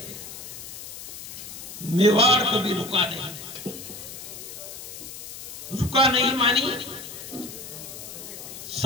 मेवाड़ कभी रुका नहीं मानी।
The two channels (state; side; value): noise; left; hiss, 11 dB below the sound